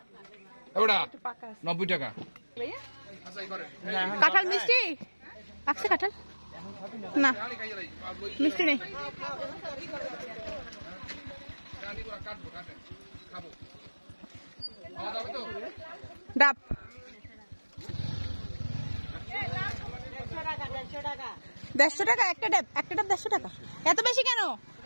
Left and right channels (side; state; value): both; inverted; correlation -1.00